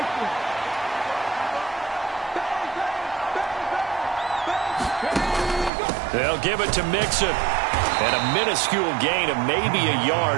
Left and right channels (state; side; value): drops out; left; at 5.7 s